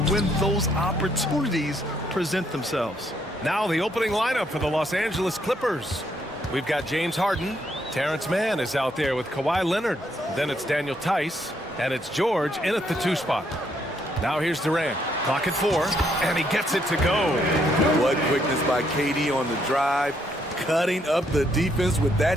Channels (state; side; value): normal; both; correlation 0.73